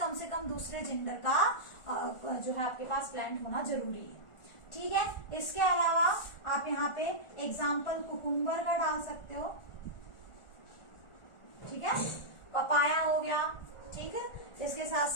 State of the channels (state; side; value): late; right; 1.4 ms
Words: से कम दूसरे जेंडर का जो है आपके पास प्लांट होना जरूरी है। ठीक है, इसके अलावा आप यहाँ पे एग्जाम्पल कुकुम्बर का डाल सकते हो। ठीक है, पपाया हो गया, ठीक है, इसके साथ